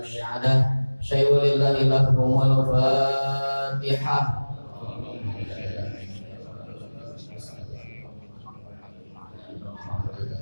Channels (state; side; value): inverted; both; correlation -1.00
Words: syahadah syai'ulillahi lahumul fatihah.